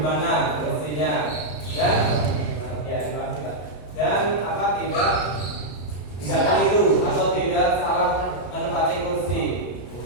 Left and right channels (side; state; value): right; late; 33 ms